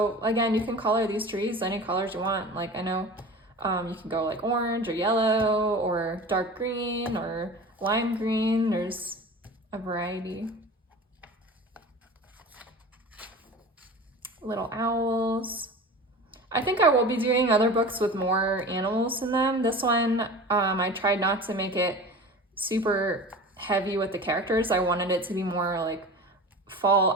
again, you can color these trees any colors you want. Like I know you can go like orange or yellow or dark green or lime green. There's a variety. Little owls. I think I will be doing other books with more animals in them. This one, I tried not to make it super heavy with the characters. I wanted it to be more like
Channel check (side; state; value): both; normal; correlation 0.35